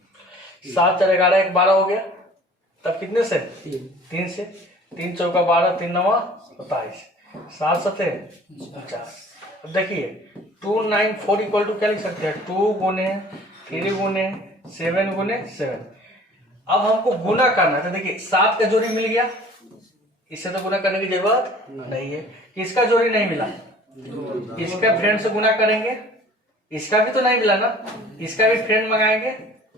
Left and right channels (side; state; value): both; normal; correlation 0.48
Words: 7 4 11 1 12 हो गया। तब कितने से? 3 से। 3 चौका 12, 3 9 27, 7 7 49। अब देखिए 294 इक्वल टू क्या लिख सकते हैं? 2 गुने 3 गुने 7 गुने 7। अब हमको गुना करना है। तो देखिए 7 का जोड़ी मिल गया, इससे तो गुना करने की जरूरत नहीं है। किसका जोड़ी नहीं मिला? इसका फ्रेंड से गुना करेंगे। इसका भी तो नहीं मिला ना, इसका भी फ्रेंड मंगाएंगे।